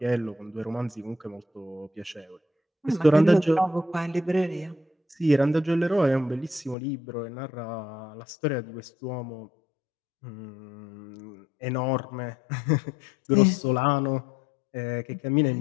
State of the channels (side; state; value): right; drops out; at 6.8 s